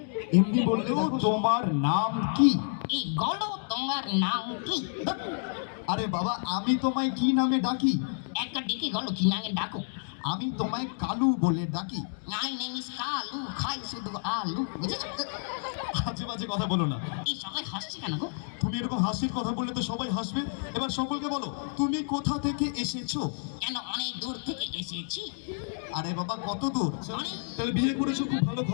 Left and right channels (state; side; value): silent; right; digital silence